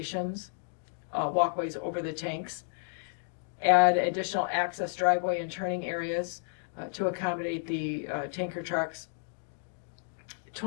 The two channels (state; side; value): silent; right; digital silence